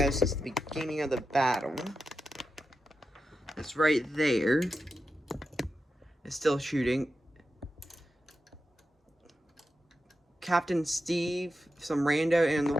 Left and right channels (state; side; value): normal; both; correlation 0.89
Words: since the beginning of the battle, it's right there, is still shooting. Captain Steve, some rando, and the